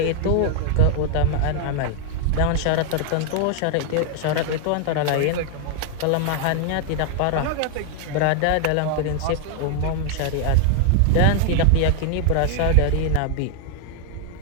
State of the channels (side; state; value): both; different; correlation 0.00